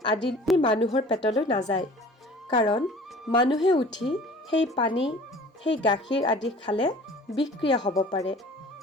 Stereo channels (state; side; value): normal; both; correlation 0.46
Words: আদি মানুহৰ পেটলৈ নাযায়। কাৰণ মানুহে উঠি সেই পানী, সেই গাখীৰ আদি খালে বিষক্ৰিয়া হ'ব পাৰে।